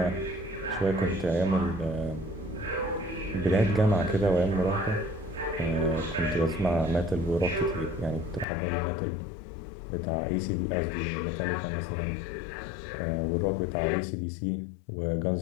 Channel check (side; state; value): right; drops out; at 8.5 s